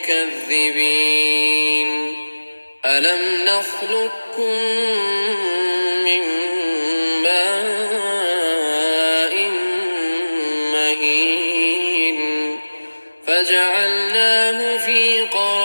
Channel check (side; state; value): both; inverted; correlation -1.00